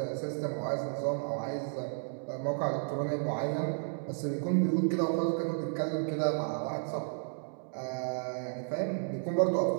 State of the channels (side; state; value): left; silent; digital silence